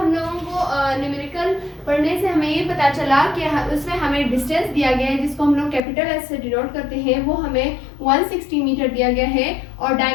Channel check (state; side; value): drops out; right; at 5.8 s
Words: लोगों को न्यूमेरिकल पढ़ने से हमें ये पता चला कि उसमें हमें डिस्टेंस दिया गया है जिसको हम लोग कैपिटल एस से डिनोट करते हैं, वो हमें 160 मीटर दिया गया है, और